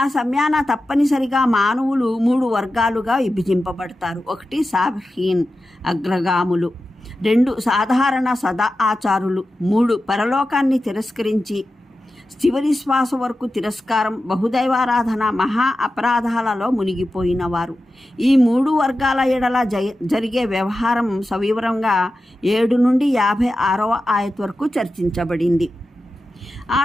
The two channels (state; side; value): normal; both; correlation 0.93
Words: సమయాన తప్పనిసరిగా మానవులు 3 వర్గాలుగా విభజింపబడతారు. 1 సాబిహీన్, అగ్రగాములు. 2 సాధారణ సదా ఆచారులు. 3 పరలోకాన్ని తిరస్కరించి చివరి శ్వాస వరకు తిరస్కారం, బహుదైవారాధన, మహా అపరాధాలలో మునిగిపోయిన వారు. ఈ 3 వర్గాల ఎడల జరిగే వ్యవహారం సవివరంగా 7 నుండి 56వ ఆయత్ వరకు చర్చించబడింది. ఆ